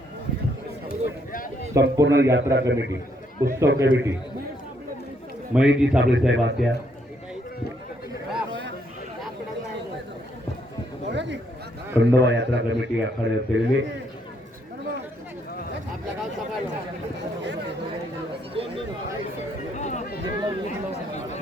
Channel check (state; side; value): normal; both; correlation 0.72